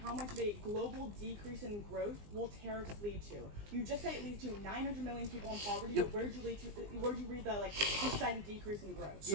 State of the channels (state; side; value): late; left; 20 ms